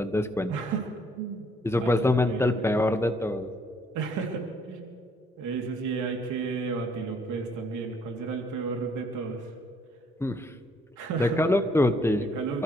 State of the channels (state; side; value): normal; both; correlation 0.66